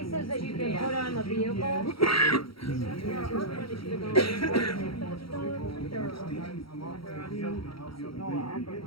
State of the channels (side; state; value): right; late; 0.75 ms